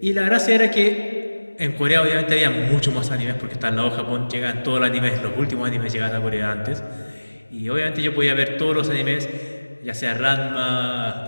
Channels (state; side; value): inverted; both; correlation -1.00